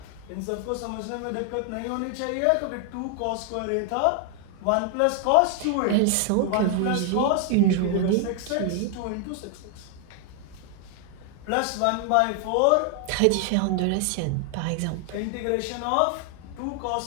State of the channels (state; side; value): different; both; correlation 0.00